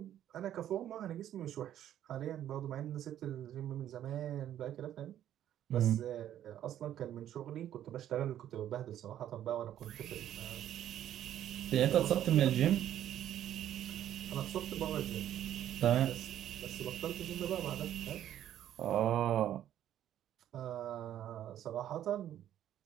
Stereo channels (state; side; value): quieter; left; 11.4 dB